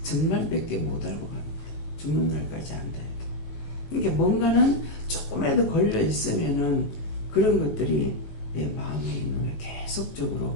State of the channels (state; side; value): late; right; 18 ms